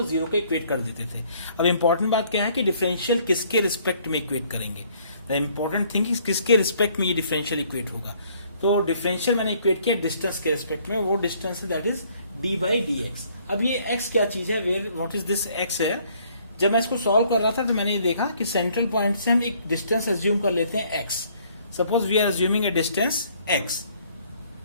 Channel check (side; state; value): both; inverted; correlation -0.62